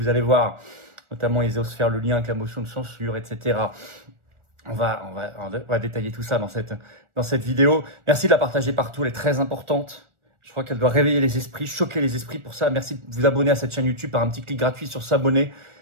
allez voir. Notamment, ils osent faire le lien avec la motion de censure, etc. On va détailler tout ça dans cette vidéo. Merci de la partager partout, elle est très importante. Je crois qu'elle doit réveiller les esprits, choquer les esprits. Pour ça, merci de vous abonner à cette chaîne YouTube par un petit clic gratuit sur s'abonner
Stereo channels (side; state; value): left; late; 1.4 ms